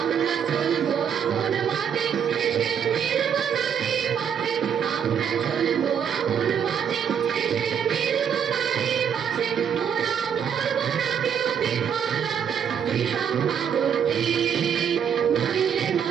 চলবো আপন মতে, শেষে মিলব নারী পথে। আমরা চলবো আপন মতে, শেষে মিলব নারী পথে। ওরা বলবো না কেউ বিফলতা বিষম ভাবতে। নইলে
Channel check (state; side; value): quieter; left; 8.0 dB